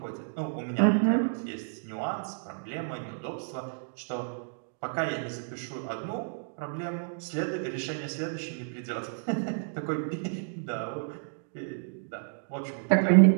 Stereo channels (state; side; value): silent; left; digital silence